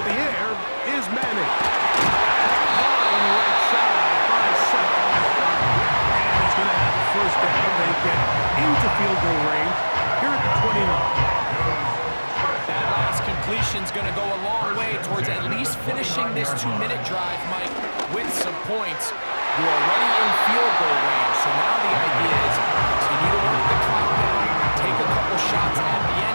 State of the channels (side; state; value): both; inverted; correlation -1.00